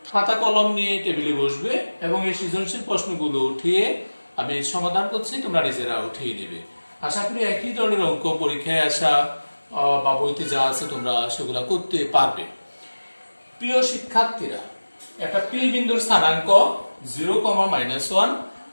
খাতা কলম নিয়ে টেবিলে বসবে এবং এই সৃজনশীল প্রশ্নগুলো উঠিয়ে আমি সমাধান করছি, তোমরা নিজেরা উঠিয়ে নেবে। আশা করি একই ধরনের অঙ্ক পরীক্ষায় আসা বা বইতে যা আছে তোমরা সেগুলা করতে পারবে। প্রিয় শিক্ষার্থীরা, একটা পি বিন্দুর স্থানাঙ্ক 0,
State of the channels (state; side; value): inverted; both; correlation -1.00